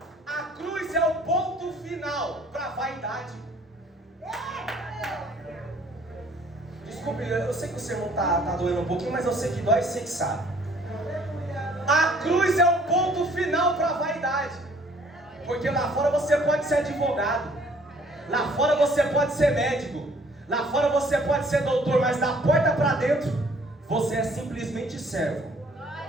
A cruz é o ponto final para a vaidade. Desculpe, eu sei que o sermão está doendo um pouquinho, mas eu sei que dói, sei que sabe. A cruz é o ponto final para a vaidade. Porque lá fora você pode ser advogado, lá fora você pode ser médico, lá fora você pode ser doutor, mas da porta para dentro você é simplesmente servo.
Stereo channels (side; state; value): both; normal; correlation 0.58